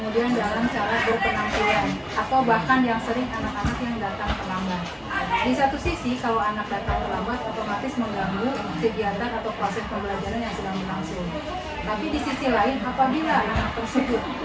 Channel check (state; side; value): identical; both; correlation 1.00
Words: dalam cara berpenampilan, atau bahkan yang sering anak-anak yang datang terlambat. Di satu sisi, kalau anak datang terlambat, otomatis mengganggu kegiatan atau proses pembelajaran yang sedang berlangsung. Tapi di sisi lain, apabila anak tersebut